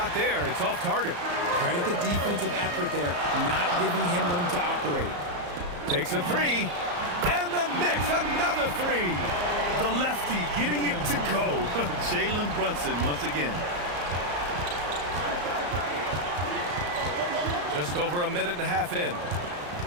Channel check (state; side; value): late; left; 34 ms